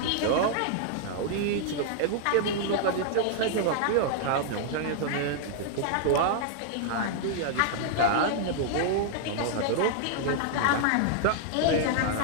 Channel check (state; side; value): different; both; correlation -0.01